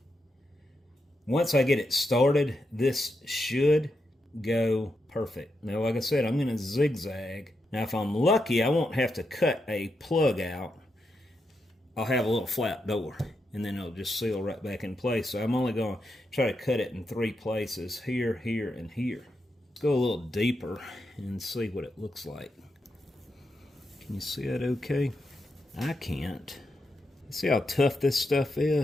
Once I get it started, this should go perfect. Now, like I said, I'm going to zigzag. Now, if I'm lucky, I won't have to cut a plug out. I'll have a little flat door, and then it'll just seal right back in place. So I'm only going to try to cut it in 3 places, here, here, and here. Let's go a little deeper and see what it looks like. Can you see that okay? I can't. See how tough this stuff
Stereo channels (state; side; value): normal; both; correlation 0.85